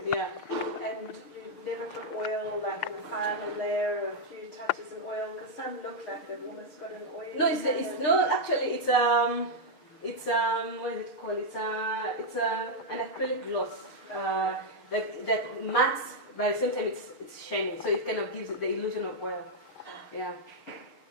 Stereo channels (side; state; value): right; late; 6.7 ms